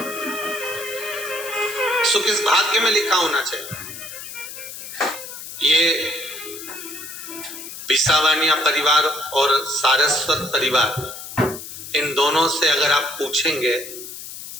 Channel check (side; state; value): left; noise; hiss, 11 dB below the sound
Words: सुख इस भाग्य में लिखा होना चाहिए। ये बिसावानिया परिवार और सारस्वत परिवार, इन दोनों से अगर आप पूछेंगे,